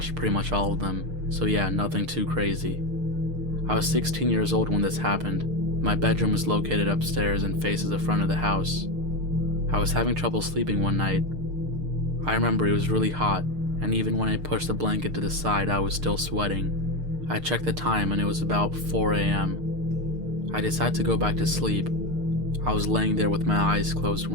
pretty much all of them. So yeah, nothing too crazy. I was 16 years old when this happened. My bedroom was located upstairs and faces the front of the house. I was having trouble sleeping one night. I remember it was really hot, and even when I pushed the blanket to the side, I was still sweating. I checked the time and it was about 4 a.m. I decided to go back to sleep. I was laying there with my eyes closed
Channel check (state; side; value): late; left; 6.6 ms